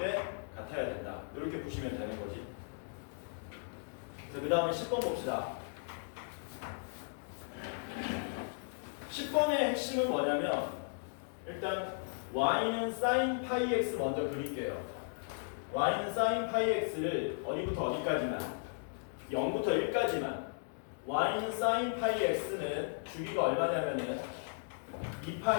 같아야 된다. 이렇게 보시면 되는 거지. 그래서 그 다음에 10번 봅시다. 10번의 핵심은 뭐냐면 일단 y는 sin 파이 x 먼저 그릴게요. y는 sin 파이 x를 어디부터 어디까지만 0부터 1까지만 y는 sin 파이 x는 주기가 얼마냐면은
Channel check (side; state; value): right; silent; digital silence